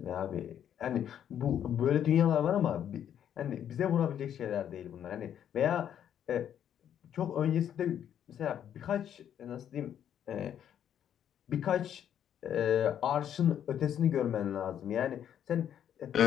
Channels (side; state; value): right; quieter; 9.7 dB